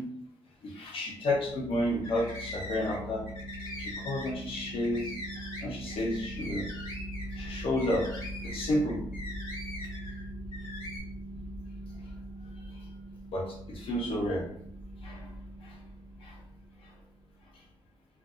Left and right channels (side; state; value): both; normal; correlation 0.67